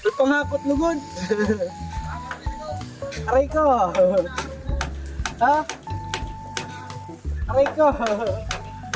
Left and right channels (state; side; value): identical; both; correlation 1.00